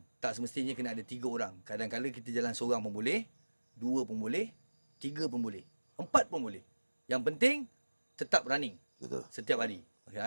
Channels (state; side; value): inverted; both; correlation -1.00